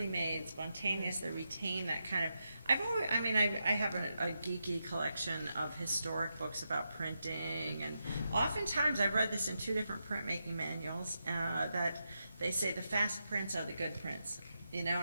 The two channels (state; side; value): inverted; both; correlation -0.86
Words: made, spontaneous. They retain that kind of. I have a geeky collection of historic books about printing, and oftentimes I've read this in 2 different printmaking manuals that they say the fast prints are the good prints. You know,